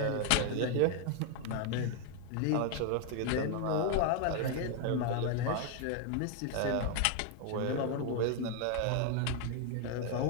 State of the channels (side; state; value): both; different; correlation 0.00